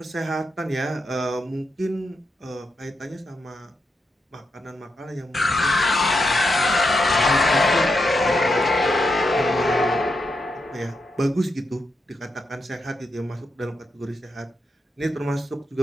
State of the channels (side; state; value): both; normal; correlation 0.84